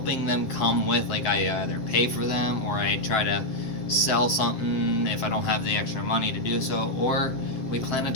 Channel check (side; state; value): right; late; 7.8 ms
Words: them come with. Like, I either pay for them, or I try to sell something if I don't have the extra money to do so, or we plan a